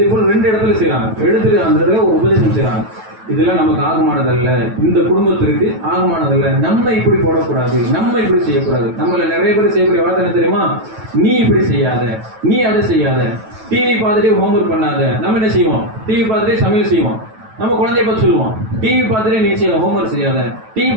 போல் 2 இடத்துல செய்யறாங்க, எடுத்துட்டு அந்த இடத்துல ஒரு உபதேசம் செய்யறாங்க. இதெல்லாம் நமக்கு ஆகமானதல்ல, இந்த குடும்பத்திற்கு ஆகமானதல்ல, நம்ம இப்படி போடக்கூடாது, நம்ம இப்படி செய்யக்கூடாது. நம்மள நிறைய பேர் செய்யக்கூடிய வார்த்தை என்ன தெரியுமா, நீ இப்படி செய்யாத, நீ அதை செய்யாத, டிவி பார்த்துட்டே ஹோம்ஒர்க் பண்ணாத. நம்ம என்ன செய்வோம், டிவி பார்த்துட்டே சமையல் செய்வோம். நம்ம குழந்தைய பார்த்து சொல்லுவோம், டிவி பார்த்துட்டே நீ செய்ய ஹோம்ஒர்க் செய்யாத, டிவி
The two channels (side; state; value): left; late; 9.1 ms